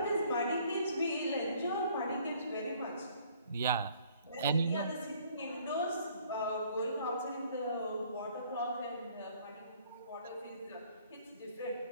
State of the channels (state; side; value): inverted; both; correlation -0.59